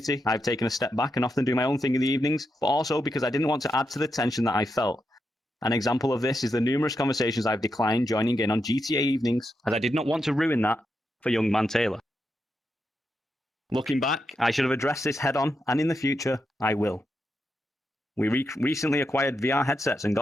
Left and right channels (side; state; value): both; normal; correlation 0.85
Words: I've taken a step back and often do my own thing in the evenings, but also because I didn't want to add to the tension that I felt. An example of this is the numerous conversations I've declined joining in on GTA evenings, as I did not want to ruin that for young man Taylor. Looking back, I should have addressed this head on, and in the future, I will. We recently acquired VR headsets and